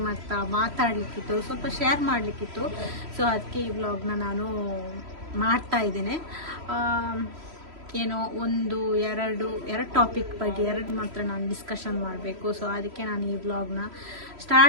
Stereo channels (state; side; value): late; left; 3.1 ms